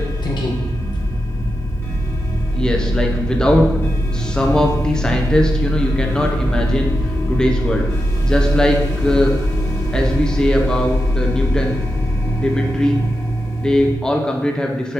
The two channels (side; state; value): both; normal; correlation 0.89